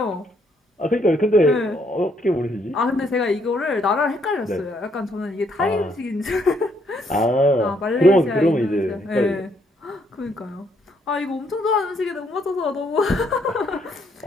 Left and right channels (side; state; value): both; normal; correlation 0.71